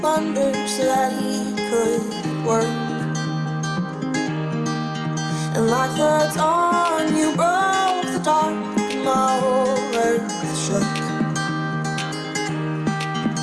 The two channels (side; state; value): both; identical; correlation 1.00